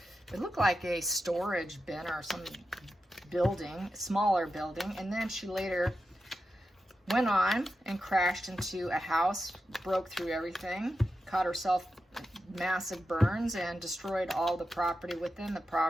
it looked like a storage bin or some building, smaller building, and then she later went on and crashed into a house, broke through everything, caught herself massive burns, and destroyed all the property within the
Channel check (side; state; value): both; normal; correlation 0.90